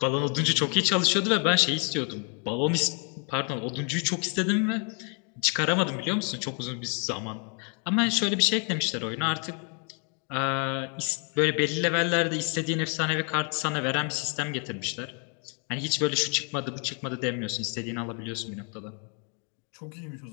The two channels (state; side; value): quieter; right; 36.8 dB